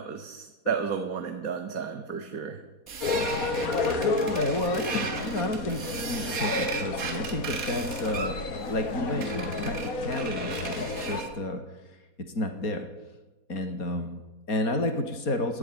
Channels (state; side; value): late; right; 4.2 ms